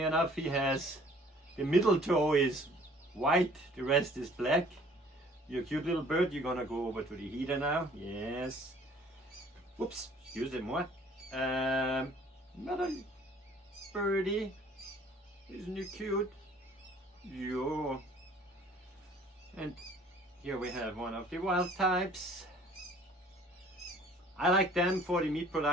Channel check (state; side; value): normal; both; correlation 0.54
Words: enough, he has, the middle toe is white, the rest is black. You're a cute little bird. You're gonna go over to the heater now. Yes. Whoops, excuse me. Another birdie. Isn't he cute? Yo. And here we have one of the wild types. I like them for the meat